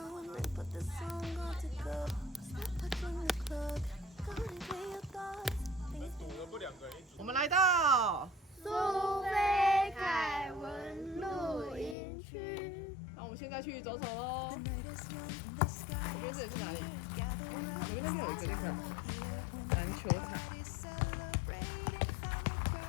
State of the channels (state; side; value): drops out; right; at 12.0 s